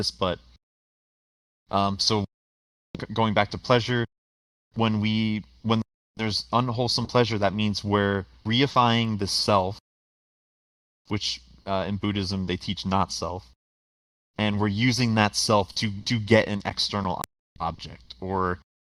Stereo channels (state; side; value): identical; both; correlation 1.00